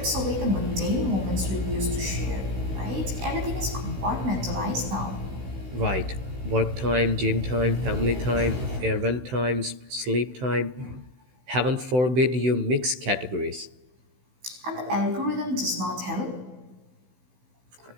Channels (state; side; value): late; left; 16 ms